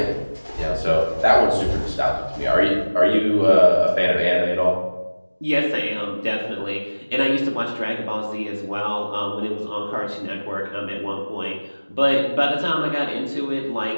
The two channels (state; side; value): inverted; both; correlation -1.00